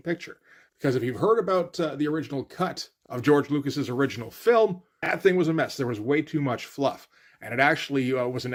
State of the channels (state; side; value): identical; both; correlation 1.00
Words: Because if you've heard about the original cut of George Lucas's original film, that thing was a mess. There was way too much fluff. And it actually was an